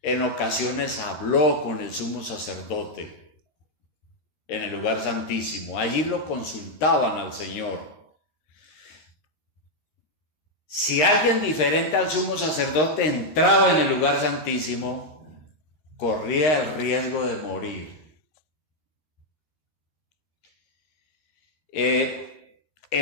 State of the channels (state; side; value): late; right; 13 ms